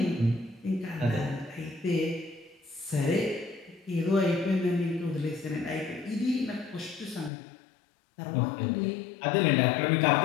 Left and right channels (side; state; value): right; drops out; at 7.3 s